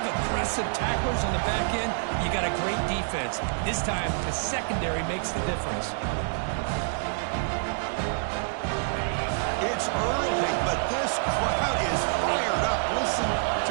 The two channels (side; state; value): left; silent; 60 dB below the other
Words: aggressive tacklers on the back end, you got a great defense. This time, the secondary makes the difference. It's early, but this crowd is fired up. Listen